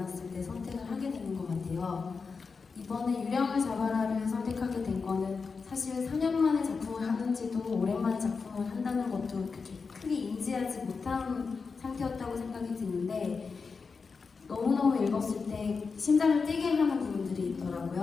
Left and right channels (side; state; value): right; quieter; 4.9 dB